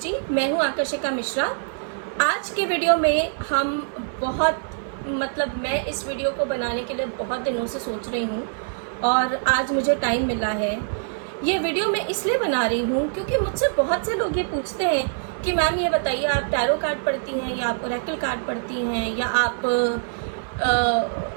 मैं हूं आकर्षिका मिश्रा। आज के वीडियो में हम मैं इस वीडियो को बनाने के लिए बहुत दिनों से सोच रही हूं और आज मुझे टाइम मिला है। ये वीडियो मैं इसलिए बना रही हूं क्योंकि मुझसे बहुत से लोग ये पूछते हैं कि मैम ये बताइए, आप टैरो कार्ड पढ़ती हैं या आप ओरेकल कार्ड पढ़ती हैं या आप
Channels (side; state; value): left; silent; 55 dB below the other